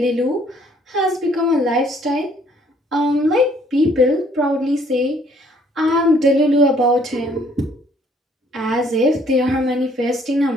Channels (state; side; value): normal; both; correlation 0.62